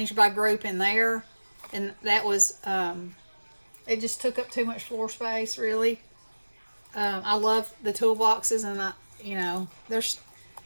by group in there, and that was it just took up too much floor space, really. I love the toolboxes, and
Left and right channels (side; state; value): both; inverted; correlation -1.00